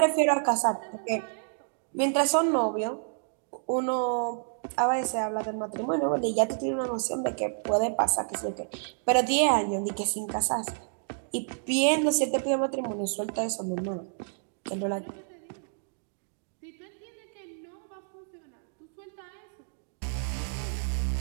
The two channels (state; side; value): silent; left; digital silence